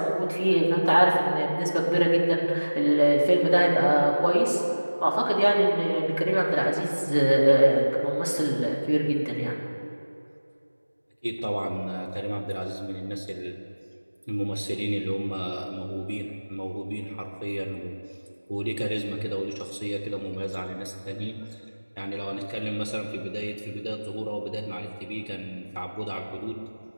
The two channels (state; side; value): inverted; both; correlation -1.00